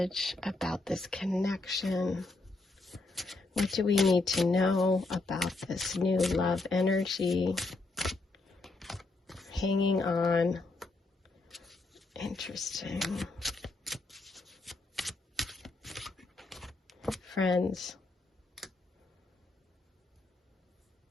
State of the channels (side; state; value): right; quieter; 3.3 dB